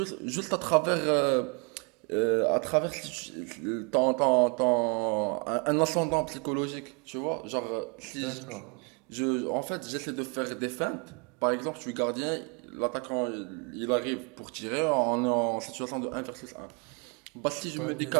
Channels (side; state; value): left; quieter; 33.9 dB